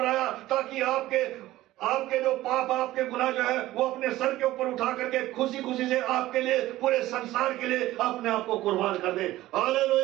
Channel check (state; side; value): quieter; left; 16.0 dB